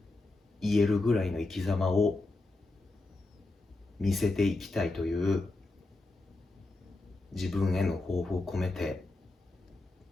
言えるぐらいの生き様を見せていきたいという自分への抱負を込めて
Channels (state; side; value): quieter; right; 3.1 dB